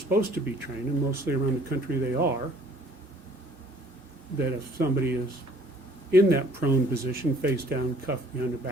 to be trained, and mostly around the country they are, that if somebody is in that prone position, face down, cuffed behind the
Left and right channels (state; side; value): normal; both; correlation 0.57